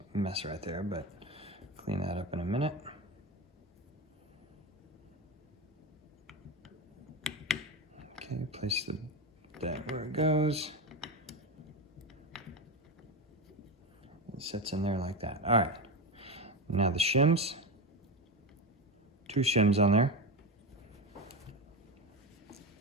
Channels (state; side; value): normal; both; correlation 0.18